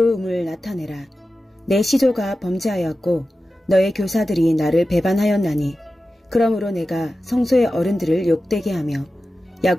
나타내라. 내 시조가 범죄하였고 너의 교사들이 나를 배반하였나니 그러므로 내가 성소의 어른들을 욕되게 하며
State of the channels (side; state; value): both; normal; correlation 0.93